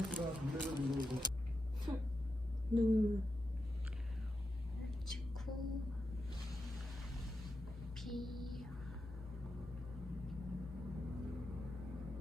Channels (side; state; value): both; normal; correlation 0.88